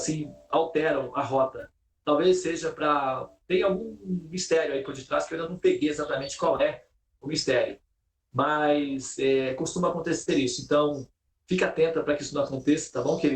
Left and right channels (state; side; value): identical; both; correlation 1.00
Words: alteram a rota. Talvez seja tem algum mistério aí por detrás que eu ainda não peguei exatamente qual é o mistério. Mas costuma acontecer isso. Então, fica atenta para que isso não aconteça, tá bom,